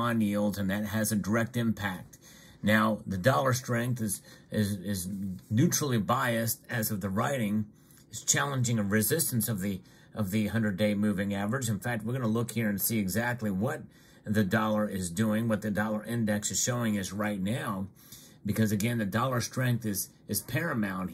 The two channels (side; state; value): both; identical; correlation 1.00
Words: yields, and that has a direct impact. Now, the dollar strength is neutrally biased as of the writing. It's challenging a resistance of the 100-day moving average. In fact, we're going to look here and see exactly what the dollar is doing, what the dollar index is showing us right now, because again, the dollar strength is paramount